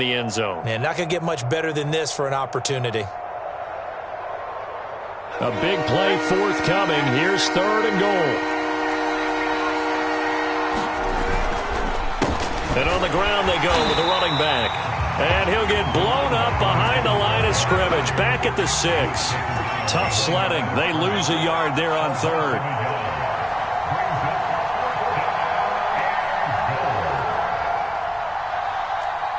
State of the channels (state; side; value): identical; both; correlation 1.00